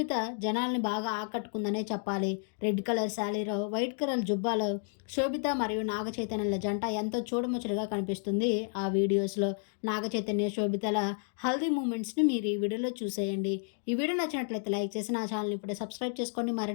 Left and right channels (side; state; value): right; silent; 57 dB below the other